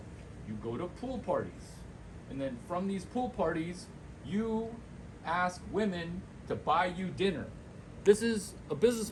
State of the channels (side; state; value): both; identical; correlation 1.00